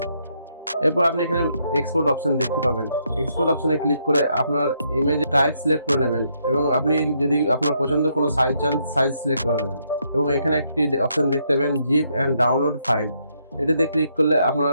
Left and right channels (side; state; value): both; inverted; correlation -0.75